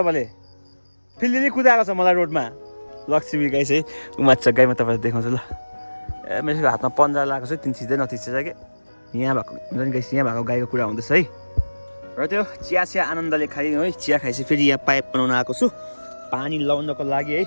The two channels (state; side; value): inverted; both; correlation -1.00